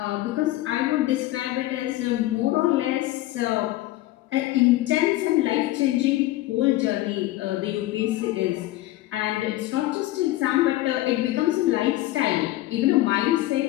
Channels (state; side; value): quieter; right; 16.6 dB